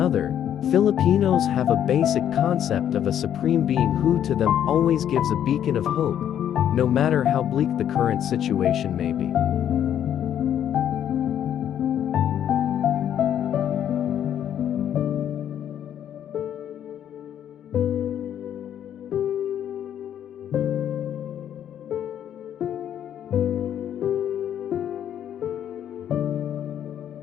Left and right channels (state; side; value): quieter; right; 10.0 dB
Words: Filipinos have a basic concept of a supreme being who to them always gives a beacon of hope, no matter how bleak the current situation may be.